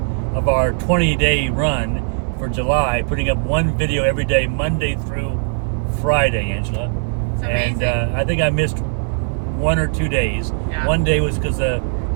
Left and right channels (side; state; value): left; silent; 61 dB below the other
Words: of our 20-day run for July, putting up one video every day, Monday through Friday, Angela. And I think I missed 1 or 2 days. Yeah. One day was because the